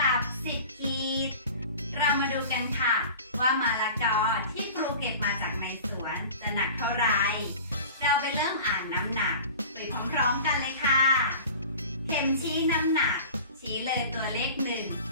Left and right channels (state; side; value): inverted; both; correlation -0.39